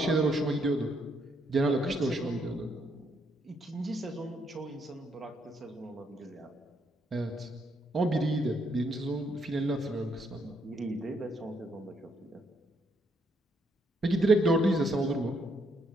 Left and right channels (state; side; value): normal; both; correlation 0.74